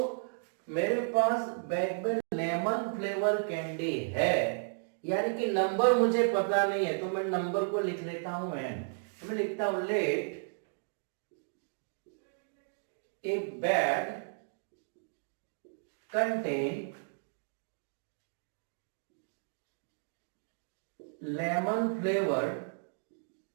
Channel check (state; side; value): silent; left; digital silence